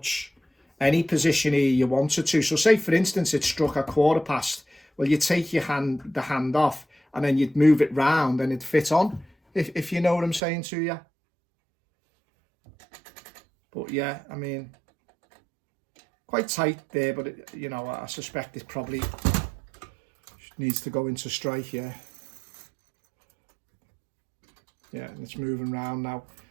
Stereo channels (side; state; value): left; drops out; at 10.4 s